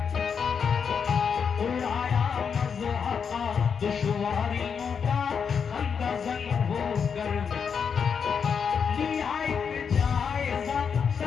उड़ाया मज़हक़ा दुश्वारियों का खंदज़न होकर। लिया एक जायज़ा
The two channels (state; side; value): quieter; right; 6.6 dB